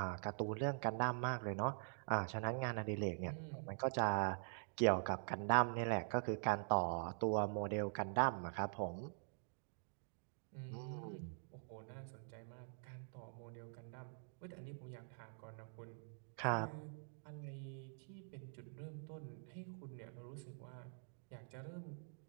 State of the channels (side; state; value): left; silent; digital silence